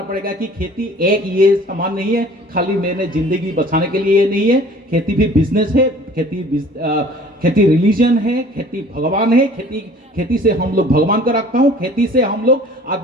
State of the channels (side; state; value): both; normal; correlation 0.49